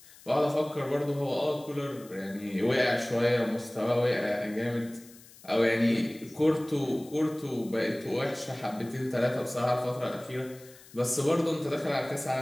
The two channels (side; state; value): left; noise; hiss, 22 dB below the sound